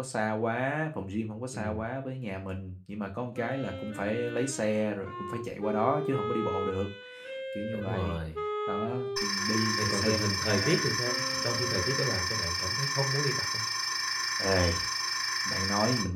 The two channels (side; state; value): both; identical; correlation 1.00